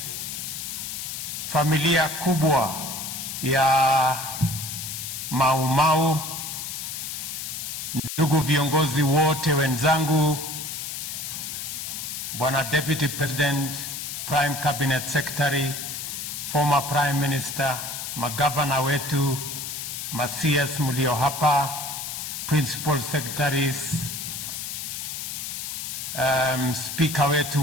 familia kubwa ya Mau Mau, ndugu viongozi wote wenzangu, Bwana Deputy President, Prime Cabinet Secretary, former Prime Minister, magavana wetu, CS mulio hapa, Principal Secretaries, Speaker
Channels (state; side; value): noise; left; hiss, 6 dB below the sound